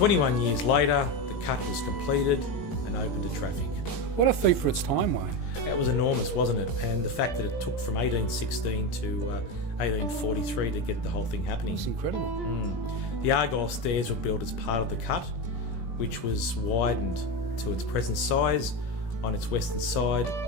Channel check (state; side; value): late; right; 17 ms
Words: years later, the cut was completed and open to traffic. What a feat for its time, Wayne. That was enormous, wasn't it? And the fact that it took from 1816 to 1843 to get the whole thing happening. It's incredible. The Argyle stairs were built as part of the cut, which was widened to its present size on its western side